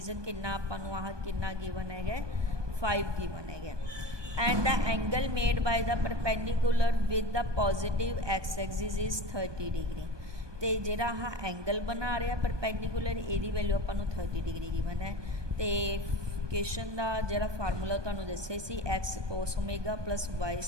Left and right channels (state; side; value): late; left; 1.2 ms